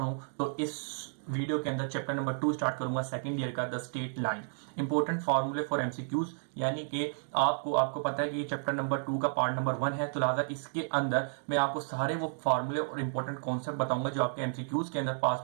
तो इस वीडियो के अंदर चैप्टर नंबर 2 स्टार्ट करूंगा, सेकंड ईयर का, द स्टेट लाइन, इंपॉर्टेंट फॉर्मूले फॉर एमसीक्यूज। यानी कि आपको पता है कि चैप्टर नंबर 2 का पार्ट नंबर 1 है, तो लिहाजा इसके अंदर मैं आपको सारे वो फॉर्मूले और इंपॉर्टेंट कॉन्सेप्ट बताऊंगा जो आपके एमसीक्यूज के अंदर पास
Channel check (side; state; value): left; silent; digital silence